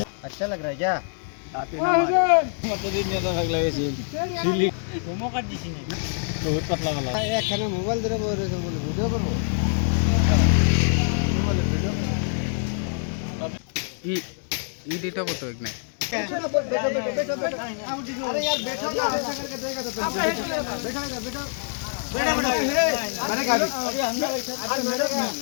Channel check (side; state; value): right; silent; 62 dB below the other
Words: अच्छा लग रहा है क्या? একখানে মোবাইল ধরে বলে ভিডিও করবো। এটা কত এক নাই अरे यार बैठो ना, ऐसा करके देगा तो तुम